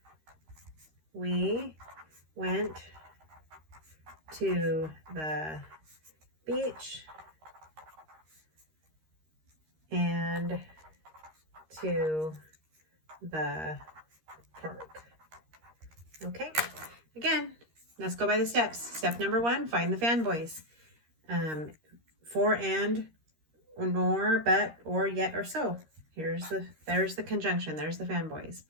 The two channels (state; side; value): late; left; 13 ms